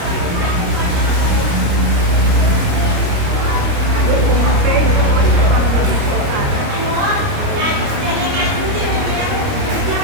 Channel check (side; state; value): left; late; 29 ms